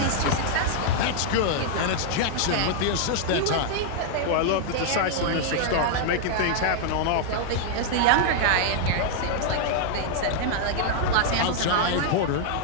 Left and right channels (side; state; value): both; different; correlation 0.00